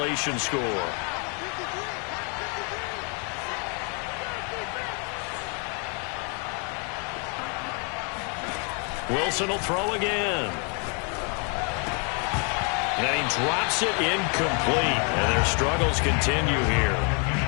score. Wilson will throw again. And he drops it incomplete. And their struggles continue here.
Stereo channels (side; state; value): right; quieter; 37.4 dB